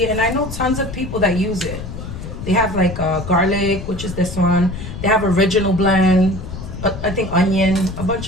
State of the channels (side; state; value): left; noise; rumble, 9 dB below the sound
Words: and I know tons of people that use it. They have like garlic, which is this one. They have original blend, I think onion, a